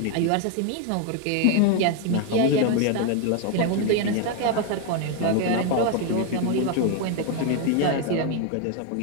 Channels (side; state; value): both; different; correlation 0.01